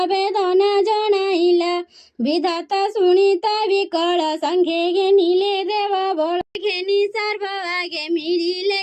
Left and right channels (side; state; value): both; identical; correlation 1.00